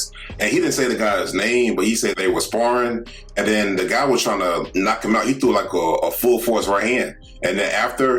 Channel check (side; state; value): both; identical; correlation 1.00